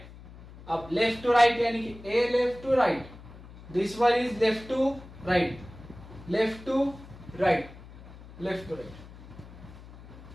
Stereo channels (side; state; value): left; noise; hum, 18 dB below the sound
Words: अब लेफ्ट टू राइट यानी कि ए left to right, this one is left to right, left to right, left to right.